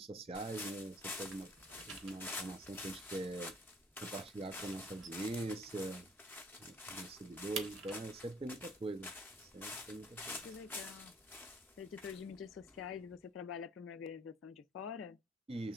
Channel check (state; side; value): normal; both; correlation 0.58